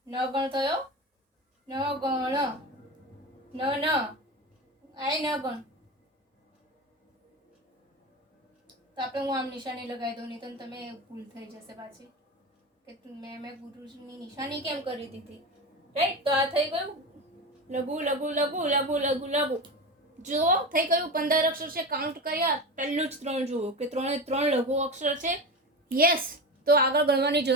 ન ગણ થયો, ન ગણ, ન ન આય ન ગણ. તો આપણે હું આમ નિશાની લગાવી દઉં, નહીં તો તમે ભૂલ થઈ જશે પાછી કે મેં ગુરુની નિશાની કેમ કરી દીધી, રાઈટ. તો આ થઈ ગયું લઘુ લઘુ લઘુ લઘુ લઘુ લઘુ. જુઓ થઈ ગયું 15 અક્ષર છે, કાઉન્ટ કર્યા. પહેલું જ 3 જુઓ કે 3 લઘુ અક્ષર છે. યસ. તો આગળ ગણવાની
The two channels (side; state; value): both; normal; correlation 0.24